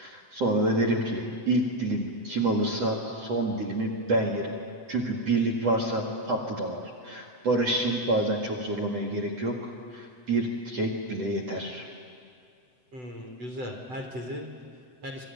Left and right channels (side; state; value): left; late; 7.9 ms